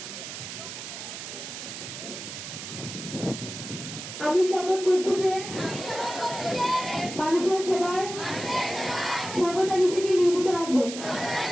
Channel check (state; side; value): noise; right; hiss, 9 dB below the sound